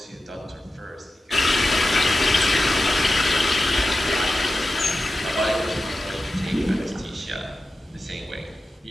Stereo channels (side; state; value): both; normal; correlation 0.93